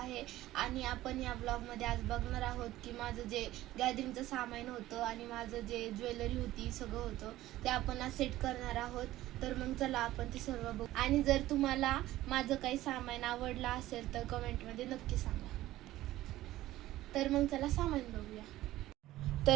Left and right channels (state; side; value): quieter; left; 15.5 dB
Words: आणि आपण या ब्लॉगमध्ये आज बघणार आहोत की माझं जे गॅदरिंगचं सामान होतं आणि माझं जे ज्वेलरी होती सगळं होतं ते आपण आज सेट करणार आहोत. तर मग चला आपण ते सर्व बघू. आणि जर तुम्हाला माझं काही सामान आवडलं असेल तर कमेंटमध्ये नक्की सांगा. तर मग चला सामान बघूया.